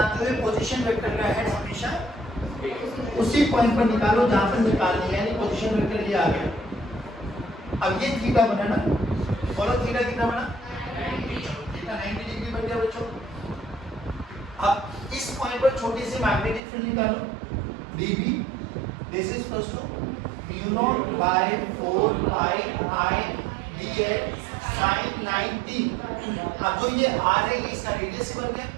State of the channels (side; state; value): left; drops out; at 16.6 s